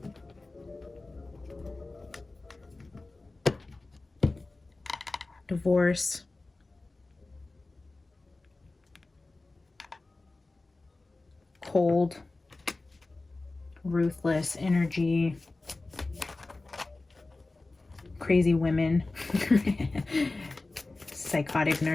Divorce. Cold. Ruthless energy. Crazy women. Psychotic,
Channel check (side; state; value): right; quieter; 3.2 dB